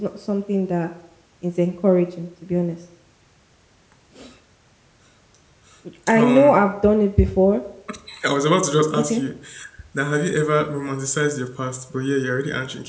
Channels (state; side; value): identical; both; correlation 1.00